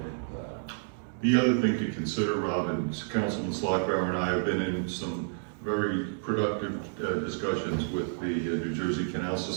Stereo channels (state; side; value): silent; left; digital silence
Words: The other thing to consider, Robin, is Councilman Slotbauer and I have been in some very productive discussions with the New Jersey Canal